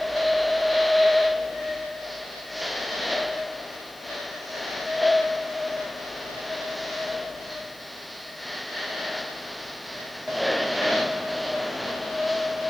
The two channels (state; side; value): noise; left; hiss, 23 dB below the sound